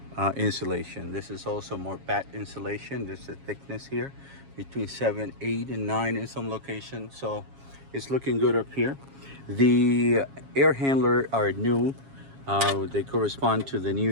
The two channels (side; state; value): left; late; 7.3 ms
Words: insulation. This is also more batt insulation. There's a thickness here between 7, 8, and 9 in some locations, so it's looking good up here. The air handler are new. They correspond to the new